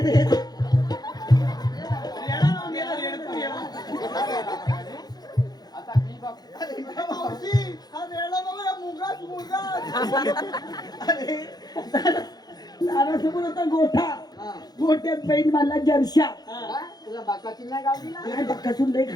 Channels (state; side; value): late; right; 0.19 ms